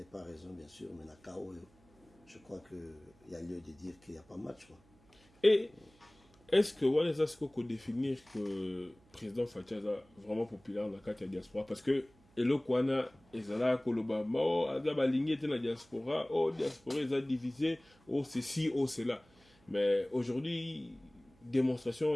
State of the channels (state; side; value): noise; right; hum, 30 dB below the sound